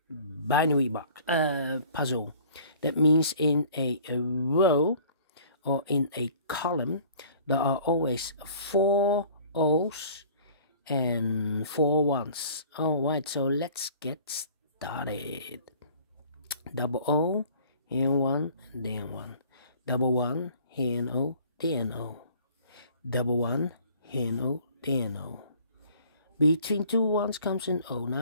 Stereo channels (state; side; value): inverted; both; correlation -0.51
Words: binary box puzzle. That means in a row or in a column there are always 4 O's and 4 1's. Alright, so let's get started. Double O, here 1, then 1. Double 1, here an O, then O. Double 1, here an O, then O. Between two ones comes an O.